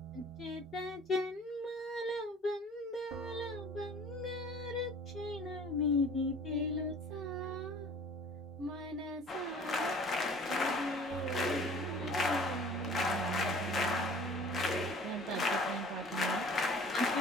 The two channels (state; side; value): normal; both; correlation 0.48